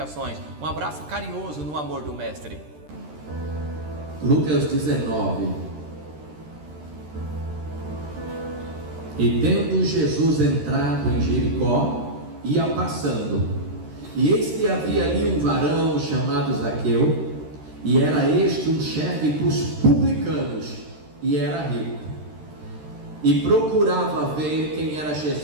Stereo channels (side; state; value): left; late; 13 ms